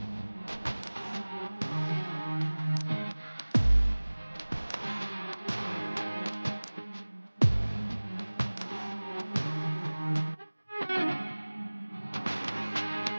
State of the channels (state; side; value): inverted; both; correlation -1.00